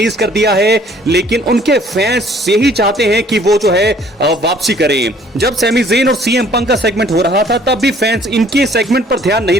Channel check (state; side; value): normal; both; correlation 0.58